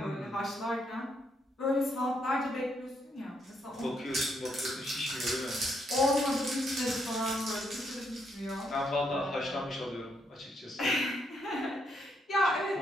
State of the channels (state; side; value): normal; both; correlation 0.76